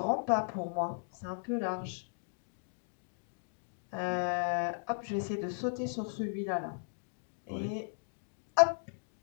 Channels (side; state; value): right; silent; digital silence